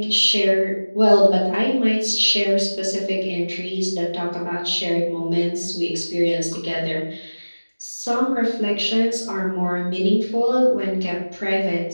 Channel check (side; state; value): both; inverted; correlation -1.00